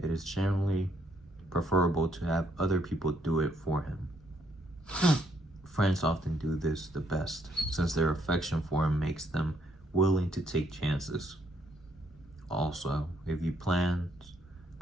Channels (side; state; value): both; normal; correlation 0.71